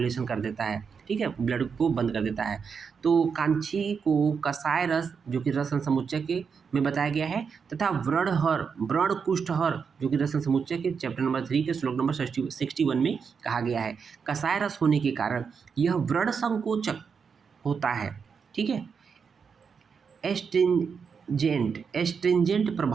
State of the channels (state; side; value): quieter; left; 6.0 dB